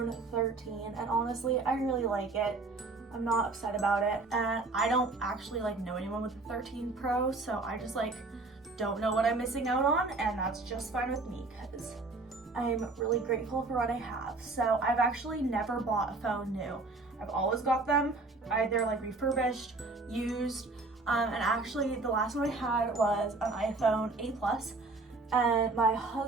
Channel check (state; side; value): quieter; left; 3.5 dB